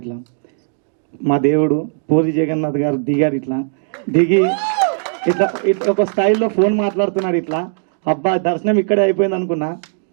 ఇట్లా మా దేవుడు పూరి జగన్నాథ్ గారు దిగారు. ఇట్లా దిగి ఇట్లా ఇట్లా ఒక స్టైల్లో ఫోన్ మాట్లాడుతున్నాడు. ఇట్లా అబ్బా దర్శనం ఇక్కడే అయిపోయింది అనుకున్నా.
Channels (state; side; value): silent; left; digital silence